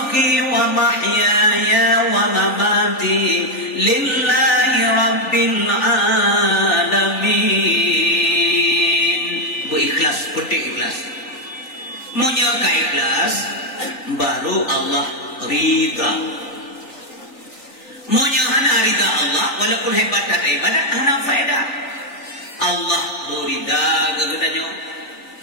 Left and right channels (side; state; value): right; late; 3.9 ms